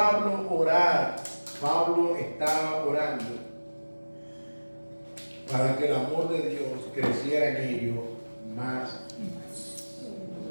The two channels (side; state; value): both; inverted; correlation -1.00